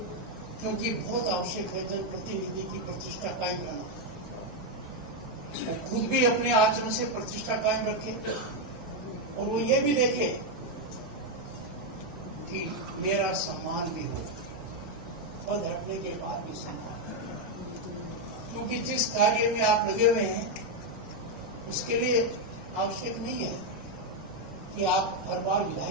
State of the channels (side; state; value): both; normal; correlation 0.03